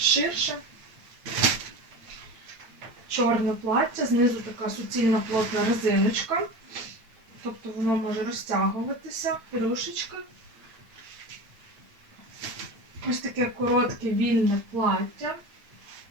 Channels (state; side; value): late; left; 8.8 ms